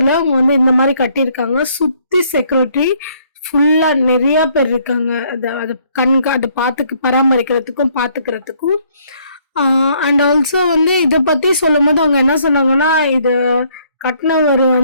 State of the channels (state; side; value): inverted; both; correlation -0.66